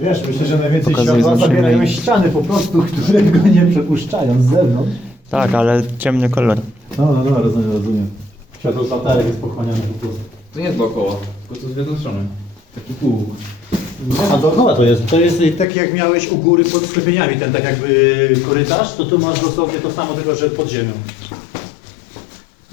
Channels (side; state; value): right; drops out; at 15.7 s